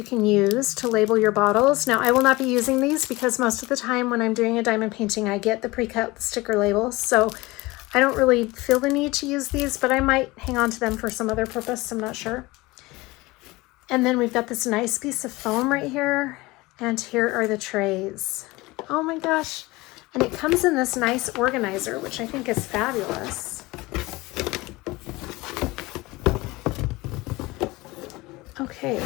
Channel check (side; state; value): right; quieter; 21.4 dB